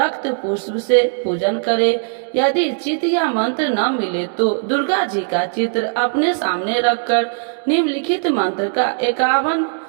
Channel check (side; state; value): left; silent; digital silence